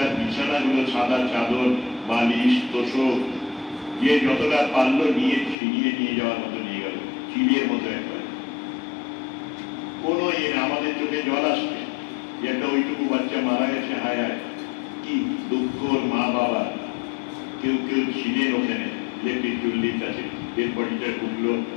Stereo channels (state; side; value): drops out; right; at 5.6 s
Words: বিছানাগুলো, সাদা চাদর, বালিশ, তোষক, যে যতটা পারলো নিয়ে ছিনিয়ে নিয়ে যাওয়ার মতো নিয়ে গেল, চিলের মতো একবার। কোনো আমাদের চোখে জল আসছে যে একটা ওইটুকু বাচ্চা মারা গেছে, হায় হায় কি দুঃখ মা বাবা। কেউ কেউ ছিলেন ওখানে ইলেকট্রিক চুল্লির কাছে, এর বডিটা ঢুকলো,